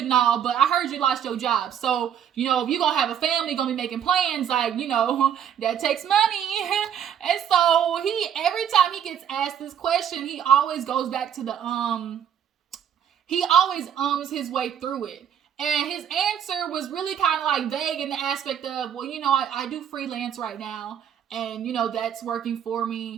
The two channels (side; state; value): left; quieter; 9.1 dB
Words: and all, but I heard you lost your job. So, if you're going to have a family, going to be making plans, like, that takes money. And so every time he gets asked this question, he always goes back to he always his way through it. And his answer was really kind of like vague in the aspect of, well, I do freelance right now, and, that's working for